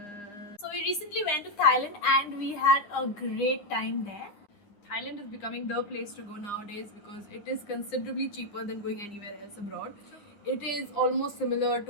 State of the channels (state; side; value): late; right; 9.7 ms